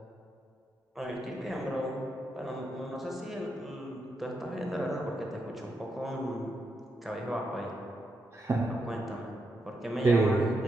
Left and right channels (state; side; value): normal; both; correlation 0.83